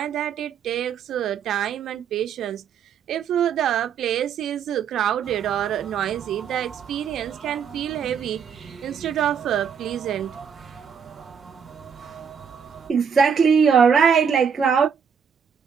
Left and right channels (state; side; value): quieter; left; 7.1 dB